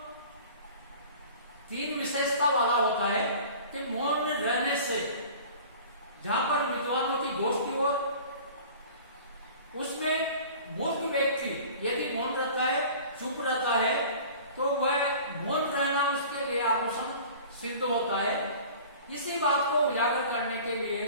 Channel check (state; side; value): inverted; both; correlation -0.43